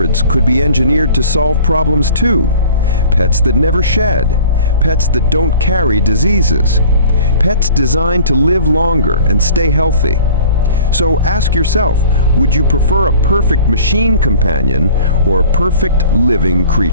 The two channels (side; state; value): both; inverted; correlation -0.46